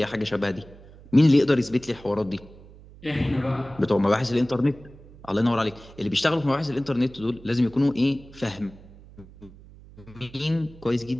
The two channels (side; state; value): right; noise; hum, 21 dB below the sound